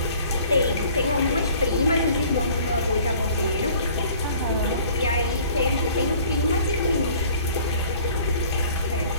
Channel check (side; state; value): both; inverted; correlation -0.52